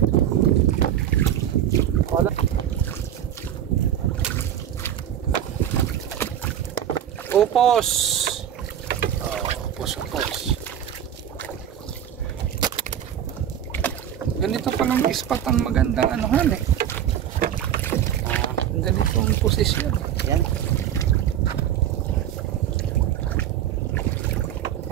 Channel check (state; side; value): quieter; left; 10.2 dB